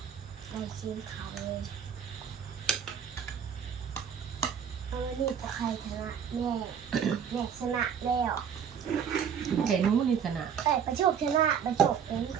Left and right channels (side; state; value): left; quieter; 7.8 dB